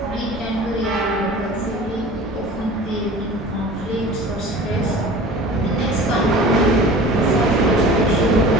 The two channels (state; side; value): normal; both; correlation 0.41